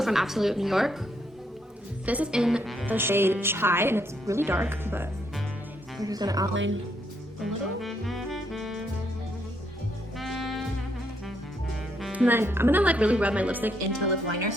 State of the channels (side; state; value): both; normal; correlation 0.74